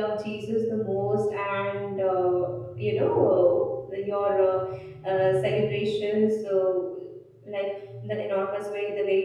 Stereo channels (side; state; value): both; identical; correlation 1.00